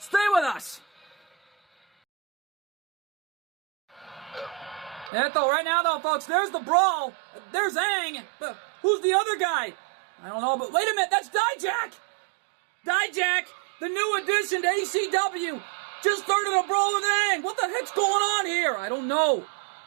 with us. And though, right now, though, folks, there's the brawl. There's Aang. But who's the other guy? I don't know, but wait a minute. That's Dijak. Dijak, the new addition to ACW, just started a brawl with Aang. What the heck's going on here? I don't know.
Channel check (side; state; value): left; drops out; at 5.1 s